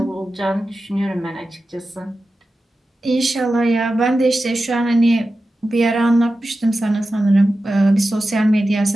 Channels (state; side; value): normal; both; correlation 0.93